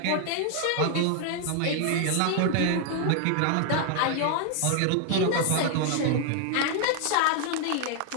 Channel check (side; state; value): both; different; correlation 0.00